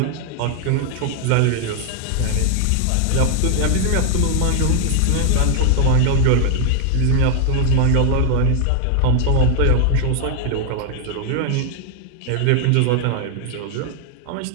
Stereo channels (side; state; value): both; different; correlation 0.00